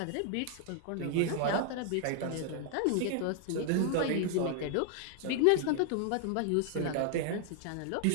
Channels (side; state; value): both; different; correlation 0.00